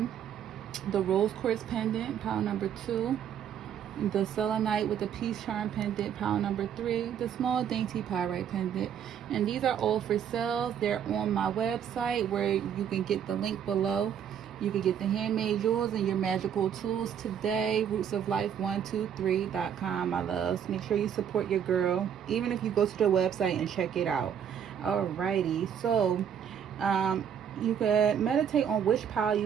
the rose quartz pendant, pile number 2, the selenite with the peace charm pendant, pile number 3, the small dainty pyrite pendant. And these are all for sale. They're on my website, where you can get the link below. You can get the handmade jewels and your magical tools today. rootsoflife123.com, my loves. Make sure you support your girl, even if you go to the website and check it out. Alrighty, so you could meditate on which pile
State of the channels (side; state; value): left; quieter; 8.6 dB